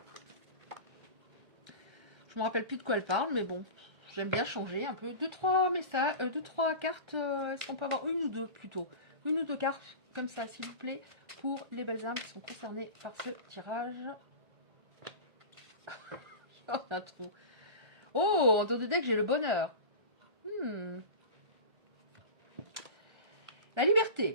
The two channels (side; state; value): left; late; 1.4 ms